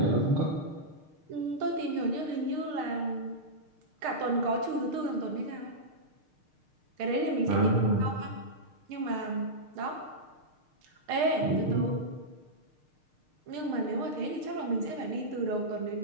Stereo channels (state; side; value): late; left; 6.6 ms